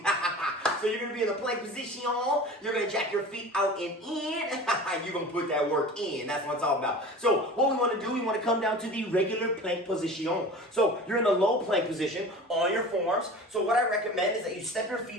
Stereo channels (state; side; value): normal; both; correlation 0.37